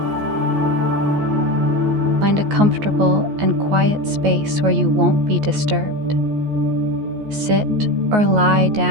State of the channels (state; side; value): late; left; 14 ms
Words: Find a comfortable and quiet space where you won't be disturbed. Sit or lie